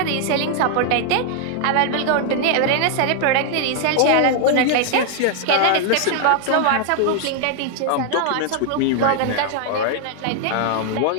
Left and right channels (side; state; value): both; different; correlation 0.00